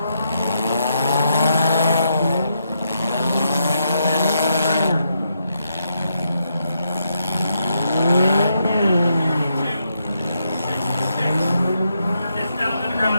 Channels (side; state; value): both; inverted; correlation -0.80